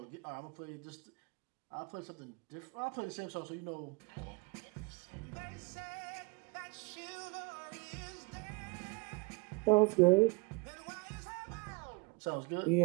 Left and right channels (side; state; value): left; quieter; 28.1 dB